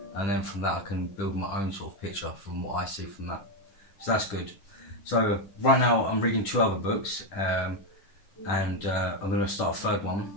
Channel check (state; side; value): late; right; 10 ms